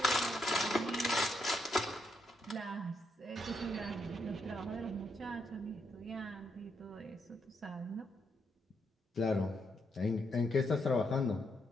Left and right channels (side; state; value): both; normal; correlation 0.79